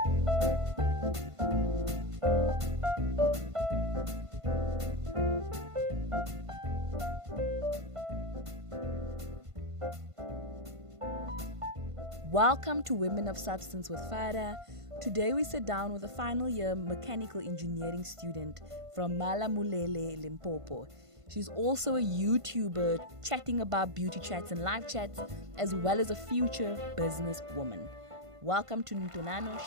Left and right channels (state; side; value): late; left; 1.5 ms